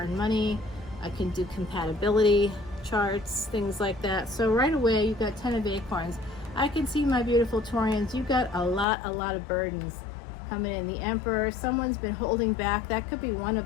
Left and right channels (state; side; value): drops out; right; at 8.8 s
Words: money. I can do compatibility charts, things like that. So right away, you've got 10 of acorns. I can see, my beautiful Taurians, you've got a lot of burdens coming in. The Emperor, someone's been holding back. That could be one of